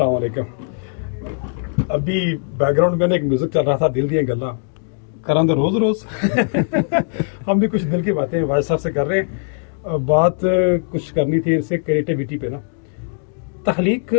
علیکم. ابھی بیک گراؤنڈ میں ایک میوزک چل رہا تھا, دل دیا گلاں کران دے روز روز. ہم بھی کچھ دل کی باتیں واجد صاحب سے کر رہے ہیں. بات کچھ کرنی تھی ان سے کریٹیوٹی پہ نا. تخلیق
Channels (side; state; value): right; silent; 58 dB below the other